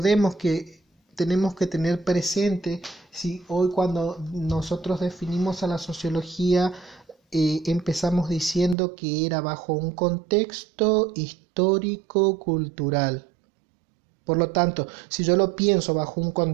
que tenemos que tener presente, si hoy cuando nosotros definimos a la sociología empezamos diciendo que era bajo un contexto histórico-cultural. Por lo tanto, si yo lo pienso bajo un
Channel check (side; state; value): left; drops out; at 8.8 s